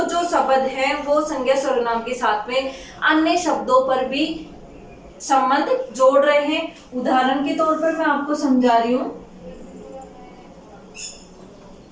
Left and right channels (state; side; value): identical; both; correlation 1.00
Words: जो शब्द है वो संज्ञा सर्वनाम के साथ में अन्य शब्दों पर भी संबंध जोड़ रहे हैं। उदाहरण के तौर पर मैं आपको समझा रही हूं।